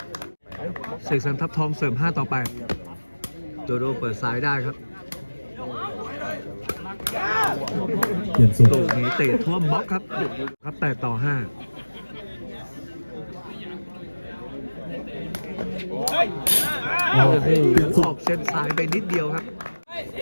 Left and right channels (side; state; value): both; inverted; correlation -1.00